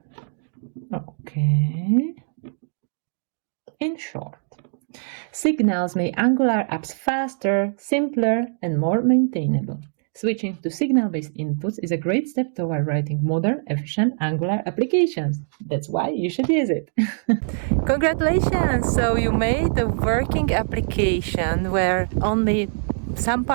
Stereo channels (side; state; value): left; silent; digital silence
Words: Okay. In short, signals make Angular apps faster, simpler, and more maintainable. Switching to signal-based inputs is a great step toward writing modern, efficient Angular applications. That's why you should use it. Congratulations! So you made a working application where only some